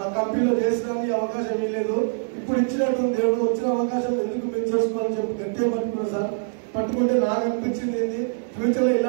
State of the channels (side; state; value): left; silent; digital silence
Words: ఆ కంపెనీలో చేసడానికి అవకాశం ఇవ్వలేదు. ఇప్పుడు ఇచ్చినట్టు దేవుడు వచ్చిన అవకాశం ఎందుకు మేము చేసుకోవాలని చెప్పి గట్టిగా పట్టుకున్నాను సార్. పట్టుకుంటే నాకు అనిపించింది ఏంటి, ఫ్యూచర్ లో